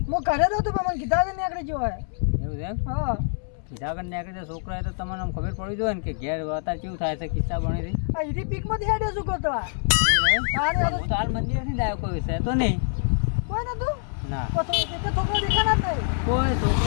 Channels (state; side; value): silent; right; 61 dB below the other